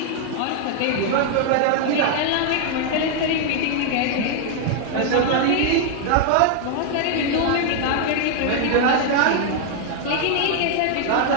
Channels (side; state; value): both; different; correlation 0.00